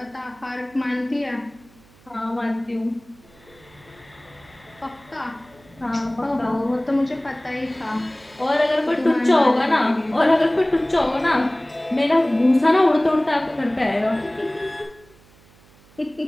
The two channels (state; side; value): noise; right; hum, 28 dB below the sound